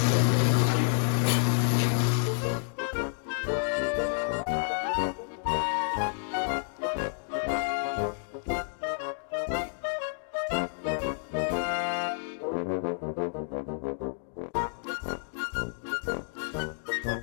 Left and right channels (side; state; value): right; silent; digital silence